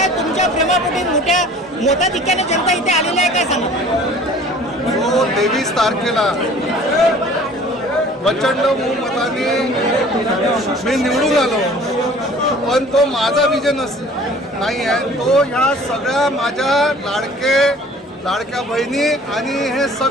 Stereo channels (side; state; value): both; normal; correlation 0.49